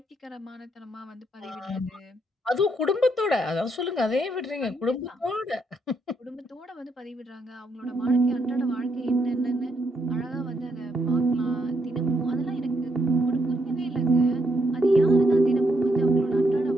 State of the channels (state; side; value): normal; both; correlation 0.76